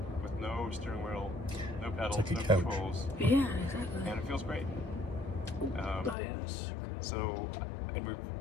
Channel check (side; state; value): right; drops out; at 6.2 s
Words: with no steering wheel, no pedals, like a no couch. controls, Yeah, exactly. and it feels great. Oh, yes. So, and we